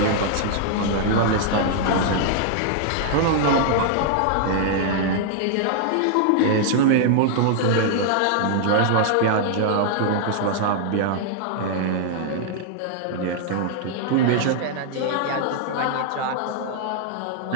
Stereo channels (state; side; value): different; both; correlation -0.01